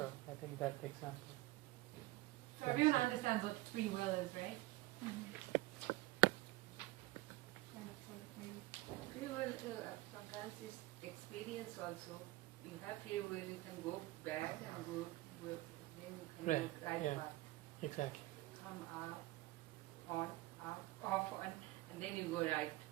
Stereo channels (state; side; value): quieter; left; 19.5 dB